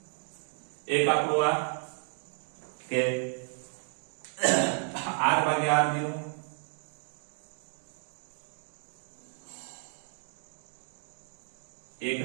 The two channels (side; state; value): left; silent; 56 dB below the other